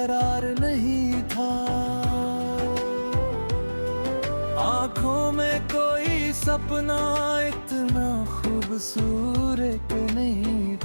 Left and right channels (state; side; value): inverted; both; correlation -1.00